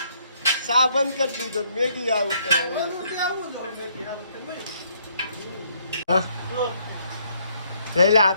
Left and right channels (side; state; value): both; inverted; correlation -0.69